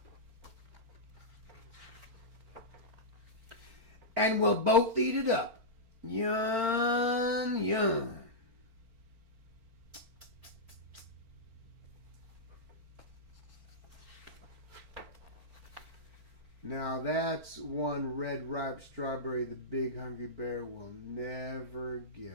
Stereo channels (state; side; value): late; left; 4.4 ms